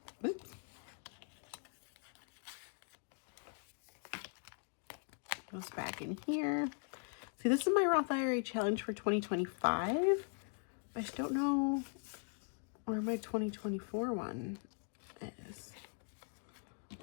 Oops. Goes back in here. See, this is my Roth IRA challenge for 2025. I just don't know where my 2024 one is.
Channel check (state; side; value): silent; right; 51 dB below the other